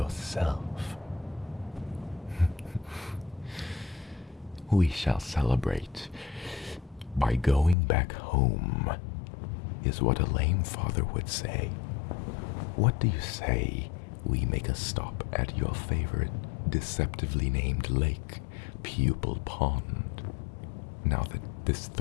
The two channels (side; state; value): right; drops out; at 7.8 s